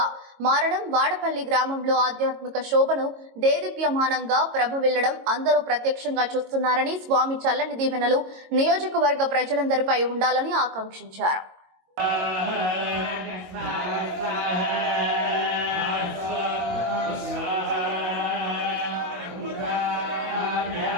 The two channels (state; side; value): late; left; 22 ms